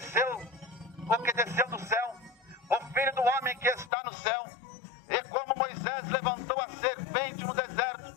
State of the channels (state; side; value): drops out; right; at 3.9 s